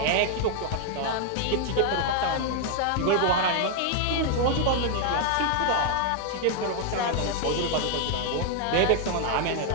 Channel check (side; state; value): both; different; correlation 0.00